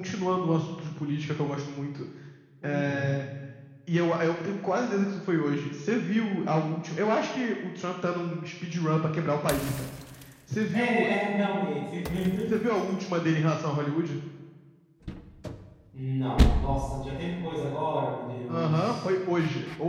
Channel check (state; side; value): identical; both; correlation 1.00